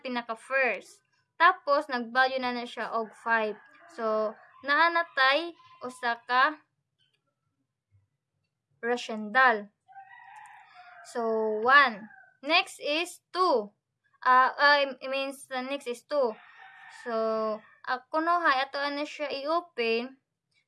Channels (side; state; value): both; identical; correlation 1.00